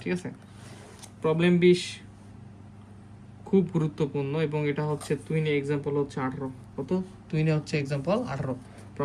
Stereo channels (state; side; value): identical; both; correlation 1.00